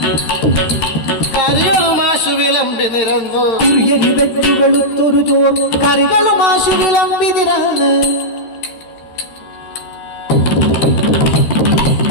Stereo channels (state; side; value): late; right; 13 ms